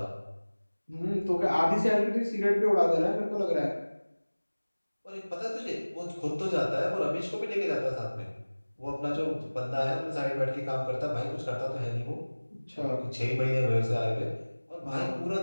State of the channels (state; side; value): inverted; both; correlation -1.00